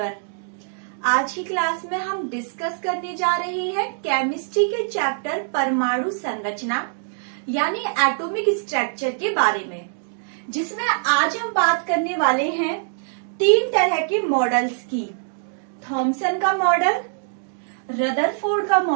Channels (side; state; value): left; silent; digital silence